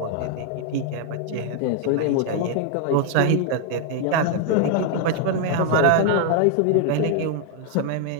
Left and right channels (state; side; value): different; both; correlation 0.00